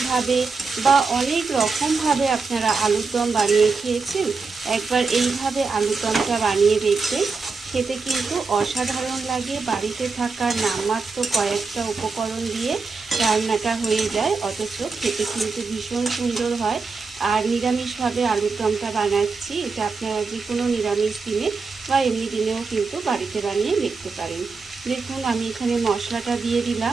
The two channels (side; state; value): left; quieter; 4.4 dB